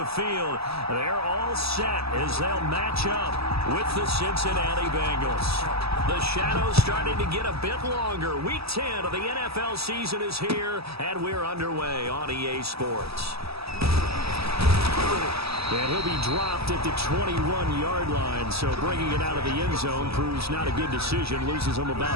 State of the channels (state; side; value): late; left; 0.78 ms